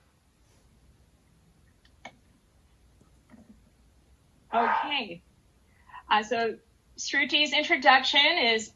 Okay, so Sruti's introduction is,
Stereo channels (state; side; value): identical; both; correlation 1.00